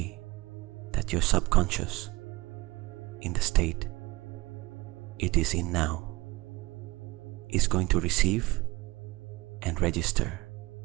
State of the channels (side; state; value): left; quieter; 21.3 dB